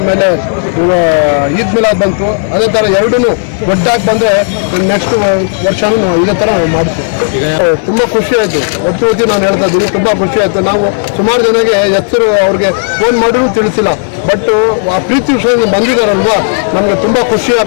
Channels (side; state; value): right; silent; digital silence